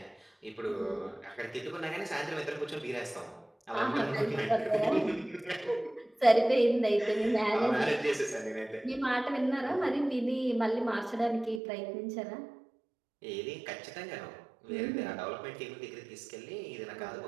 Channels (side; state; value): left; drops out; at 11.6 s